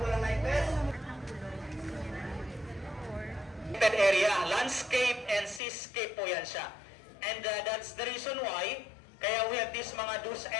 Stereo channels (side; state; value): right; drops out; at 5.6 s